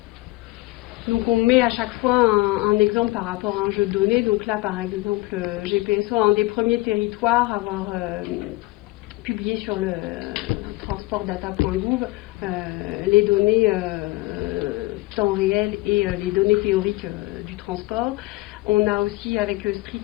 donc on met à chaque fois un exemple par rapport à un jeu de données. Donc là, par exemple, GPSO, un des premiers territoires à avoir publié sur le transportdata.gouv les données temps réel et les données théoriques du transport. On a aussi avec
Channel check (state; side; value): quieter; right; 20.7 dB